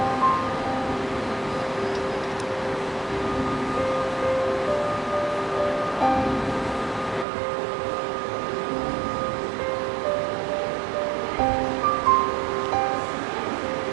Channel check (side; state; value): left; drops out; at 7.2 s